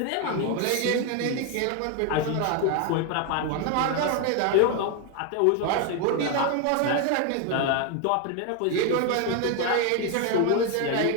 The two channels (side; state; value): both; different; correlation 0.01